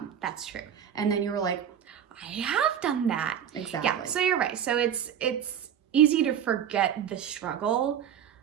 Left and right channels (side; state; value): left; quieter; 9.0 dB